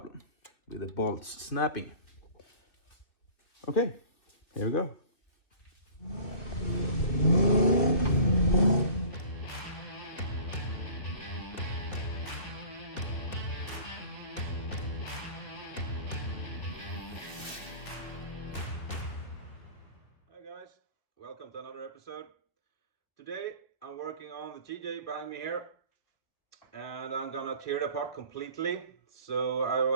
with the bolts snapping. Okay, here we go. Hi guys, welcome to another episode. Today I'm working on the TJ behind me here, and I'm gonna tear it apart completely. So I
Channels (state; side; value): late; right; 2.6 ms